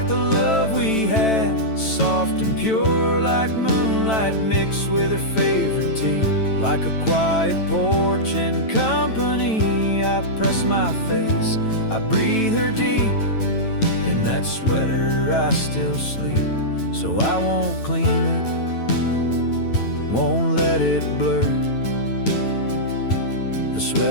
the love we had, soft and pure, like moonlight mixed with her favorite tea. Like a quiet porch and company, I press my face, I breathe her deep. In that sweater I still sleep, so I won't clean it, won't let it blur. The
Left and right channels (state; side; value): late; right; 9.1 ms